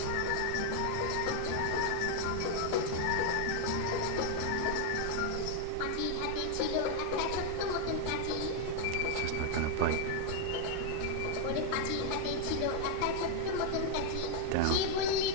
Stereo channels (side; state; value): both; different; correlation 0.00